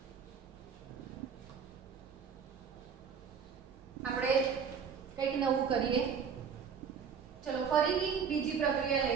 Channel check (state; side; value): quieter; left; 6.6 dB